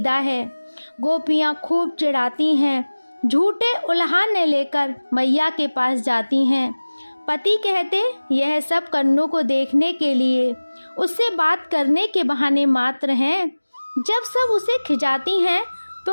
है। गोपियाँ खूब चिढ़ाती हैं। झूठे उल्हाने लेकर मैया के पास जाती हैं। पति कहते यह सब कन्नू को देखने के लिए, उससे बात करने के बहाने मात्र हैं। जब सब उसे खिजाती हैं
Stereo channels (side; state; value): both; inverted; correlation -1.00